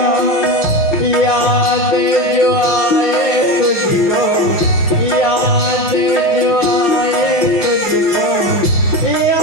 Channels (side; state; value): right; late; 5.7 ms